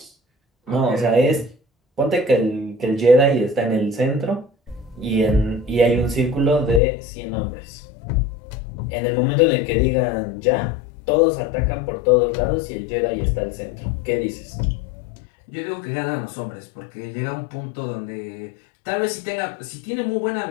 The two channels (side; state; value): right; drops out; at 6.8 s